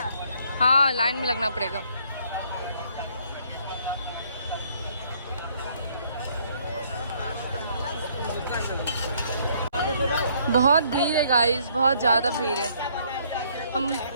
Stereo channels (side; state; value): both; inverted; correlation -0.65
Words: हाँ, लाइन में लगना पड़ेगा। बहुत भीड़ है गाइस, बहुत ज़्यादा भीड़ है। हम